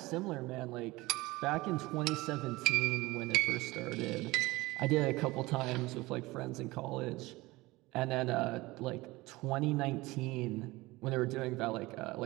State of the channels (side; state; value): left; quieter; 20.7 dB